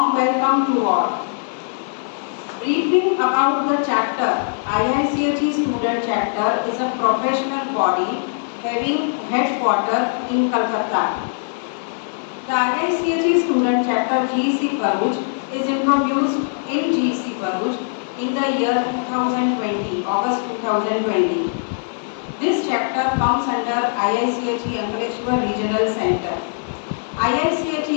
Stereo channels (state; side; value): silent; right; 65 dB below the other